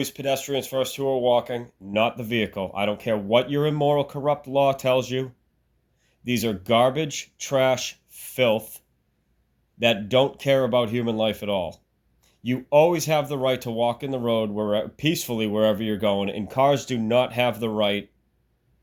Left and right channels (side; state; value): both; identical; correlation 1.00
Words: pedestrians first who are walking, not the vehicle. I don't care what your immoral, corrupt law tells you. These are garbage, trash, filth that don't care about human life at all. You always have the right to walk in the road peacefully wherever you're going, and cars do not have the right